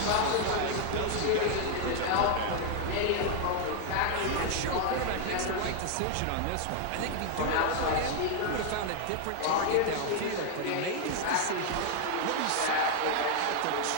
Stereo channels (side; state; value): both; different; correlation 0.00